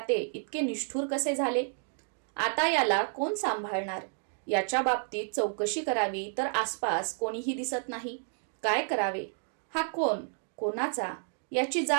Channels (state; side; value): silent; left; digital silence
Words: इतके निष्ठुर कसे झाले? आता याला कोण सांभाळणार? याच्या बाबतीत चौकशी करावी तर आसपास कोणीही दिसत नाही. काय करावे? हा कोण? कोणाचा? याची